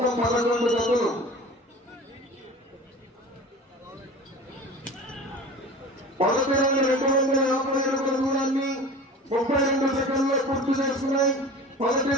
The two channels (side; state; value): both; normal; correlation 0.37